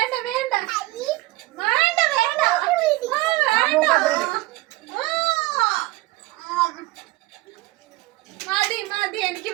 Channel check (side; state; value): left; quieter; 19.8 dB